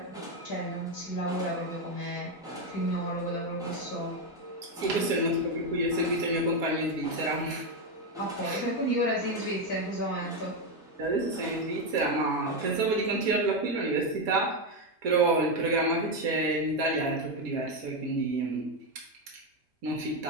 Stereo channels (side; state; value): both; normal; correlation 0.08